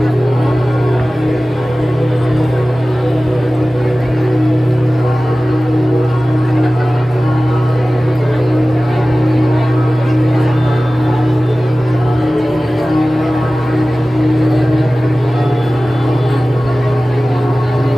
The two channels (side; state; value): both; normal; correlation 0.97